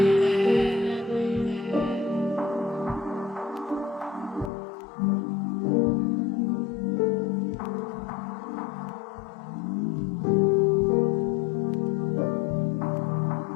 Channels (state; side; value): drops out; right; at 4.5 s